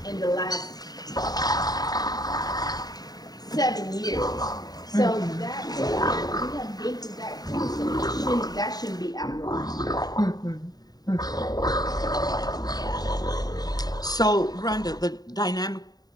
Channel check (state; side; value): late; right; 0.19 ms